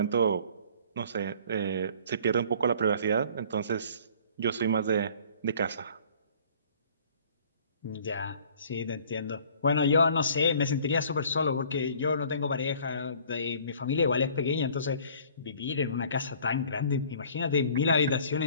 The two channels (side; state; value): both; inverted; correlation -0.52